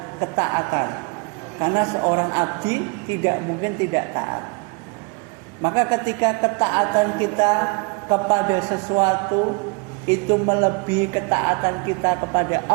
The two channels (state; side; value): quieter; left; 32.4 dB